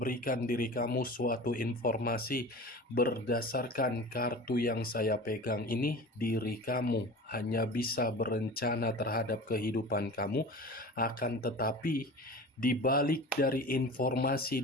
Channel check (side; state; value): both; normal; correlation 0.36